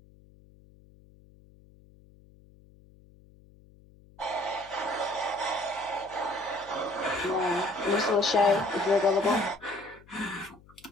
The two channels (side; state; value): left; noise; hum, 26 dB below the sound